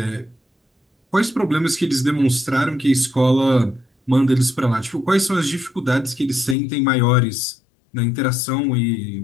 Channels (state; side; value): drops out; right; at 6.6 s